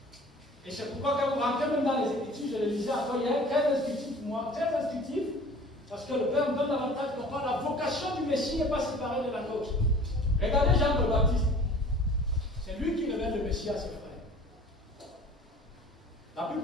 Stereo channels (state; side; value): normal; both; correlation 0.46